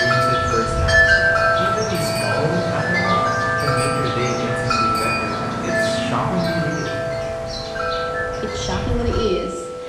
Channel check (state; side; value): identical; both; correlation 1.00